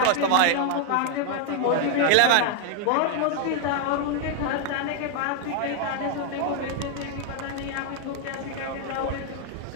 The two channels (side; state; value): both; different; correlation 0.00